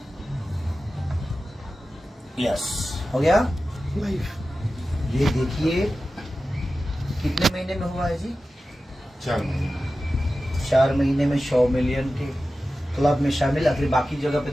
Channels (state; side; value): normal; both; correlation 0.94